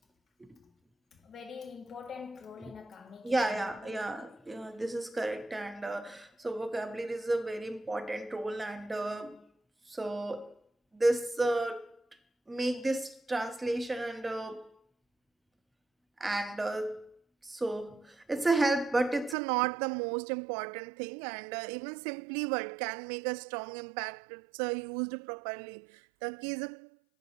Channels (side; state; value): left; drops out; at 19.4 s